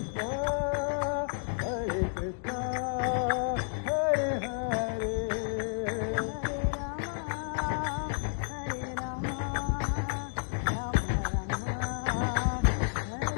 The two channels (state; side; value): silent; right; digital silence